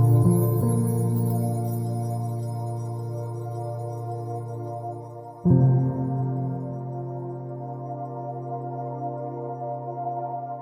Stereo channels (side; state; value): both; identical; correlation 1.00